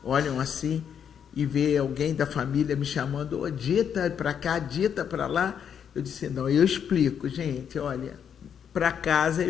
olham assim e vê alguém da família me chamando, ô Dita para cá, Dita para lá, eu disse, não, eu explico, gente, olha, para casa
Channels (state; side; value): quieter; right; 8.1 dB